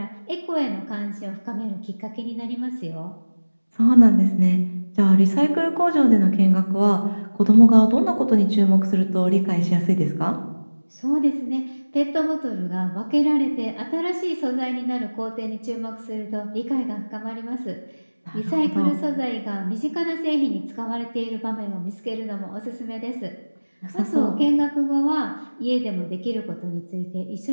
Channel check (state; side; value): inverted; both; correlation -1.00